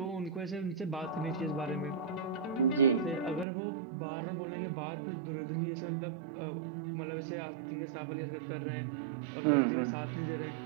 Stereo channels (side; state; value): left; drops out; at 3.5 s